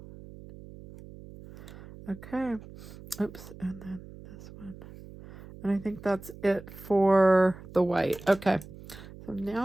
okay. Oops, and then this one. And I think that's it for the white. Okay, so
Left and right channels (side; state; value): right; noise; hum, 17 dB below the sound